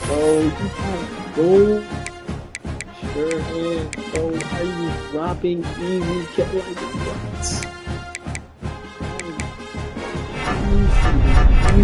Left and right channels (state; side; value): identical; both; correlation 1.00